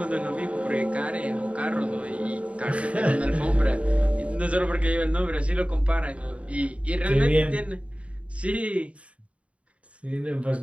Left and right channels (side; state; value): left; late; 0.064 ms